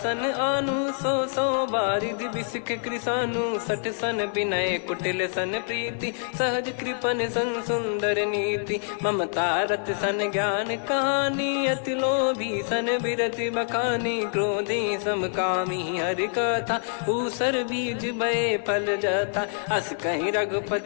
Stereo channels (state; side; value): silent; right; 61 dB below the other